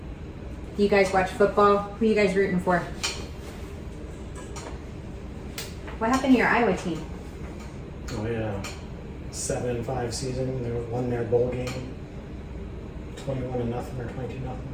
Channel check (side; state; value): both; identical; correlation 1.00